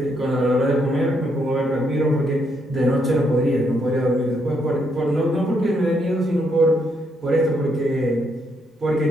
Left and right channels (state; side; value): normal; both; correlation 0.76